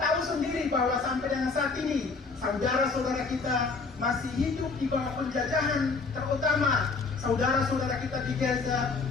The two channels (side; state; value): right; quieter; 4.3 dB